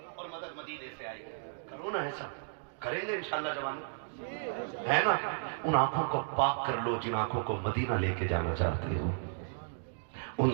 اور مدد مدینے سے آئے گی. کرو نا ایسا, کریں گے انشاءاللہ جوانوں, ہے نا؟ ان آنکھوں کو پاک کر لو جن آنکھوں کو مدینہ لے کے جانا چاہتے ہو. ان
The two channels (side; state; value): left; silent; digital silence